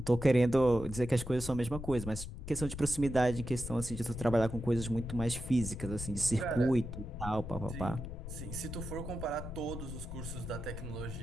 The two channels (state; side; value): noise; left; rumble, 9 dB below the sound